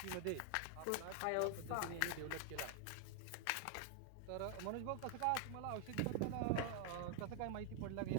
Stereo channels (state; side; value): different; both; correlation 0.00